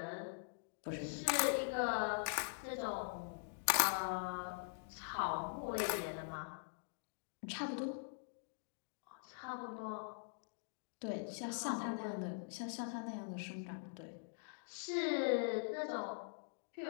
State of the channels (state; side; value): silent; right; digital silence